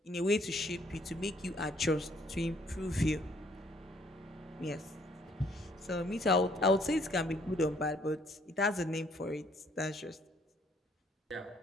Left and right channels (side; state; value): both; normal; correlation 0.65